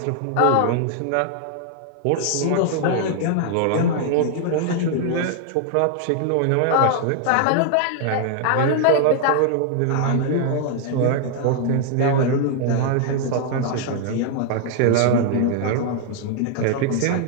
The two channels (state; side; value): different; both; correlation 0.00